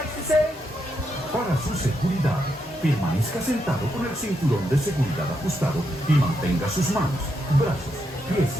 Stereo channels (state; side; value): normal; both; correlation 0.81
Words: to say, para su seguridad, permanezca sentado con el cinturón de seguridad ajustado y mantenga sus manos, brazos, pies